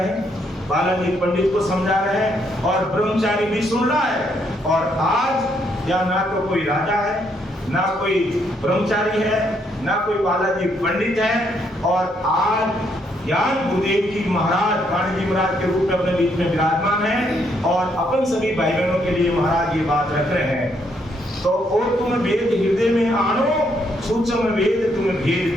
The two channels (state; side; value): normal; both; correlation 0.73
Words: हैं, बालाजी पंडित को समझा रहे हैं, और ब्रह्मचारी भी सुन रहा है। और आज या ना तो कोई राजा है, ना कोई ब्रह्मचारी है, ना कोई बालाजी पंडित है, और आज ज्ञान गुरुदेव जी महाराज वाणी जी महाराज के रूप में अपने बीच में विराजमान है, और अपन सभी भाई बहनों के लिए महाराज ये बात रख रहे हैं। तो और तुम वेद हृदय में आनो, सूक्ष्म वेद तुम भेद